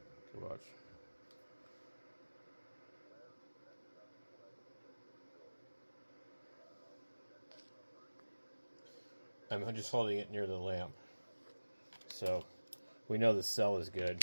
Watch. I'm just holding it near the lamp. So we know the cell is good.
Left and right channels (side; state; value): both; inverted; correlation -1.00